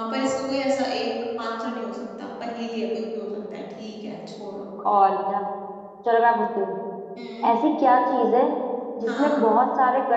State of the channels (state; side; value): identical; both; correlation 1.00